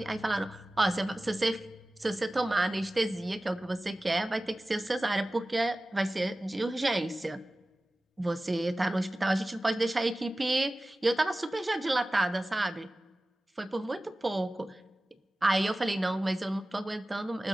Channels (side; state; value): both; normal; correlation 0.97